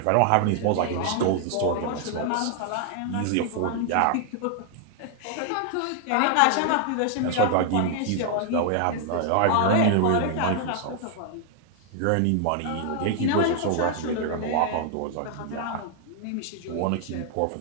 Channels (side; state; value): both; different; correlation 0.00